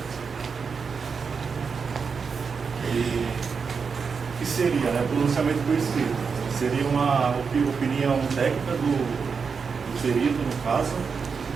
E o que seria, né? Pronunciamento por escrito. Seria uma opinião técnica do perito, no caso,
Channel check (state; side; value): quieter; left; 5.6 dB